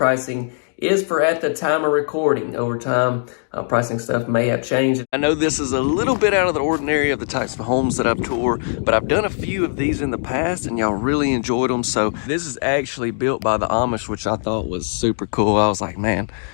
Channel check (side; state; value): right; silent; digital silence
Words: is for at the time of recording. Over time, pricing stuff may have changed. I know this is a little bit out of the ordinary of the types of homes that I've toured, but I've done a few of these in the past and y'all really enjoyed them. So this is actually built by the Amish, which I thought was super cool. I was like, man,